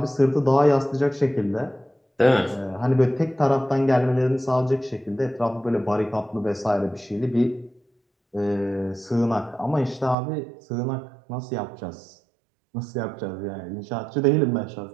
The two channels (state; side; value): drops out; left; at 10.2 s